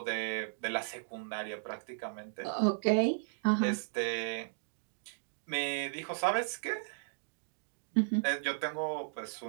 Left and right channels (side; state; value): left; silent; digital silence